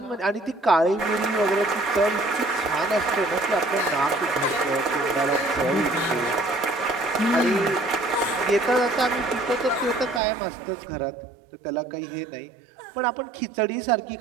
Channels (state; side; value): drops out; left; at 10.2 s